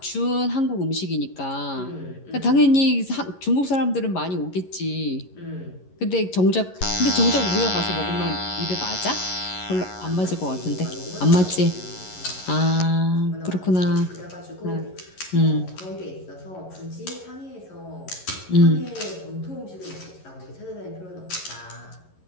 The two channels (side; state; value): right; late; 11 ms